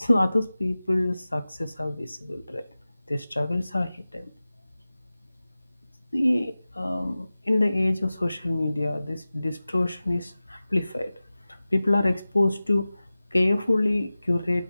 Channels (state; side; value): inverted; both; correlation -0.96